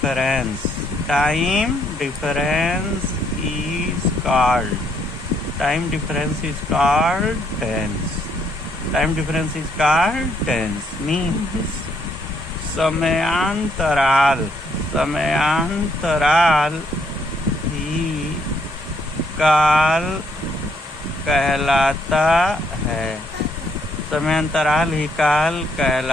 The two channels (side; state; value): both; normal; correlation 0.71